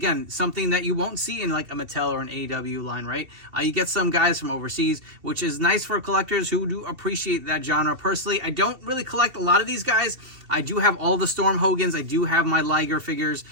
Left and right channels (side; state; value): left; late; 2.7 ms